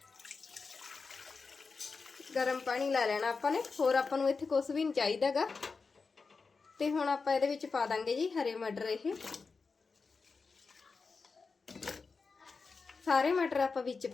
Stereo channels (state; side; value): quieter; right; 4.6 dB